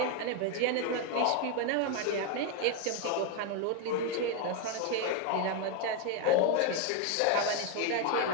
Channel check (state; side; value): different; both; correlation 0.01